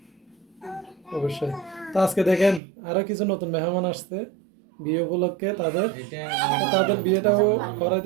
অবশ্যই। তো আজকে দেখেন আরো কিছু নতুন মেহমান আসছে বিয়ে উপলক্ষে, তাদের তাদের বিয়েটাও করা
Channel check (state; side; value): drops out; left; at 2.6 s